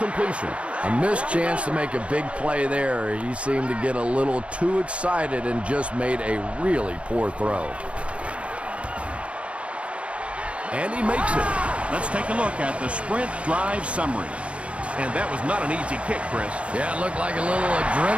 A missed chance to make a big play there. He seemed to get a little too excited and just made a really poor throw. And he makes it. Let's take a look at the sprint drive summary. And that was not an easy kick, Chris. Yeah, it looked like a little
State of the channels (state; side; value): late; left; 0.061 ms